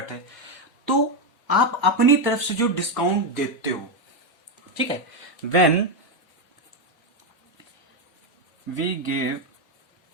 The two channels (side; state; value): both; normal; correlation 0.06